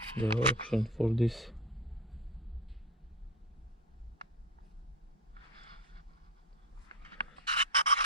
the option for this.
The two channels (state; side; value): normal; both; correlation 0.22